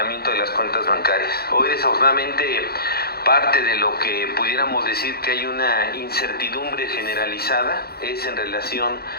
de las cuentas bancarias. Hoy desafortunadamente parte de lo que pudiéramos decir que hay una incertidumbre generalizada es en relación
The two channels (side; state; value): right; late; 0.45 ms